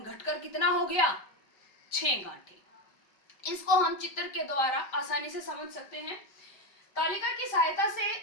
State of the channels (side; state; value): right; late; 5.2 ms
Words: कितना हो गया? 6 गांठें। इसको हम चित्र के द्वारा आसानी से समझ सकते हैं। तालिका की सहायता से